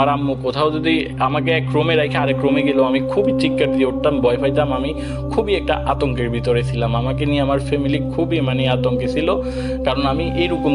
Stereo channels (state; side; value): identical; both; correlation 1.00